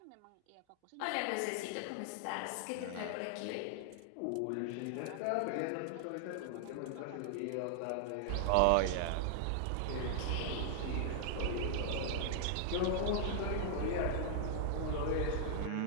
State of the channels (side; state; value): both; different; correlation 0.00